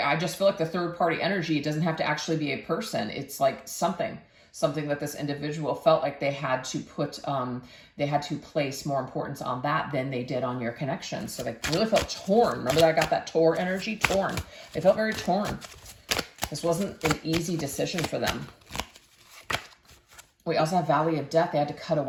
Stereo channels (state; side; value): identical; both; correlation 1.00